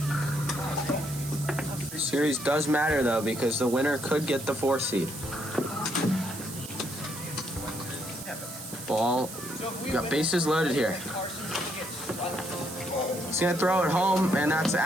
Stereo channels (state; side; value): noise; right; hiss, 11 dB below the sound